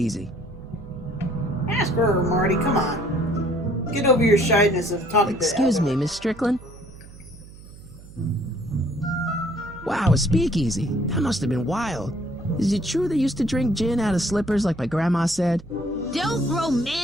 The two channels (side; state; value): right; noise; hum, 19 dB below the sound